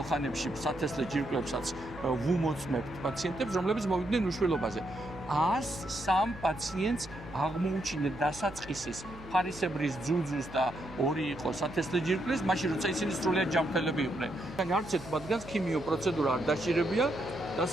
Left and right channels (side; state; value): right; noise; hum, 18 dB below the sound